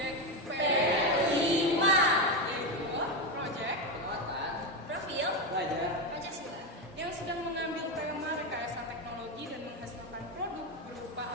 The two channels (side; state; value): both; normal; correlation 0.11